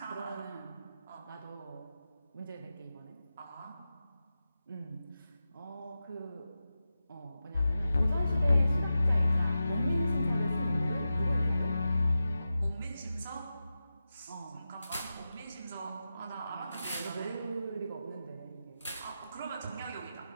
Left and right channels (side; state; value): both; inverted; correlation -0.92